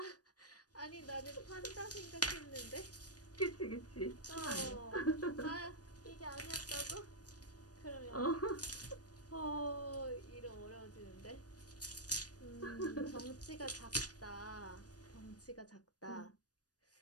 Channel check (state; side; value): late; right; 0.68 ms